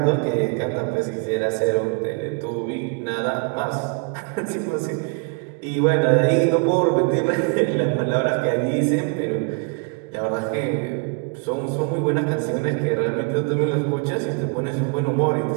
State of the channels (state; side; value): quieter; left; 33.8 dB